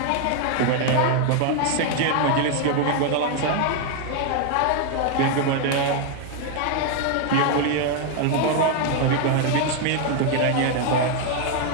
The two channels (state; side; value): different; both; correlation 0.01